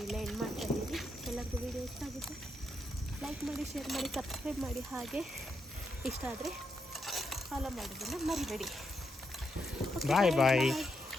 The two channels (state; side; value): normal; both; correlation 0.81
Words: ಇಲ್ಲೇ ಎಂಡ್ ಮಾಡ್ತಾಯಿದ್ದೀನಿ. ಎಲ್ಲರಿಗೂ ವೀಡಿಯೋ ಇಷ್ಟ ಆಗುತ್ತೆ ಲೈಕ್ ಮಾಡಿ, ಶೇರ್ ಮಾಡಿ, ಸಬ್ಸ್ಕ್ರೈಬ್ ಮಾಡಿ. ಹಾಗೆ ಇಷ್ಟ ಆದರೆ ಫಾಲೋ ಮಾಡೋದನ್ನು ಮರಿಬೇಡಿ. ಬಾಯ್.